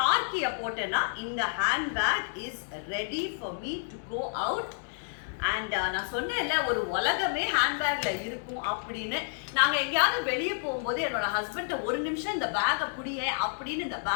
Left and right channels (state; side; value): silent; right; digital silence